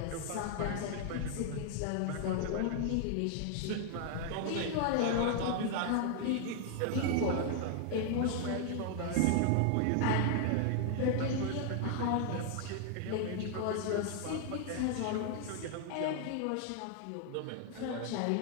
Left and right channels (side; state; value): both; different; correlation 0.00